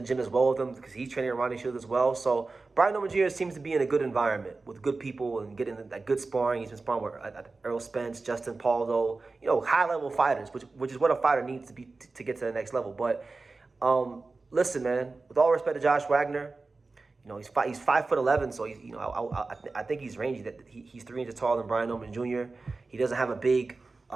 as well with him because he's training at Ronnie Shields as well. So Brian Norman Jr. seems to be in a good environment with good people and getting that good sparring. He's been sparring with Earl Spence, Justin Paldo, high-level fighters, which is what a fighter needs to be to get to the next level. But listen, man, with all respect to Josh Wagner, he's 5'11", so he's I think he's rangy. That he's 3 inches taller than Brian Norman Jr. He doesn't have a big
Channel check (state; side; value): quieter; left; 3.7 dB